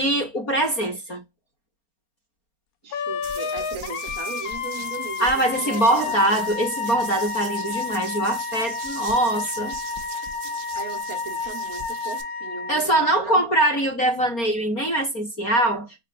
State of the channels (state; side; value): late; right; 4.3 ms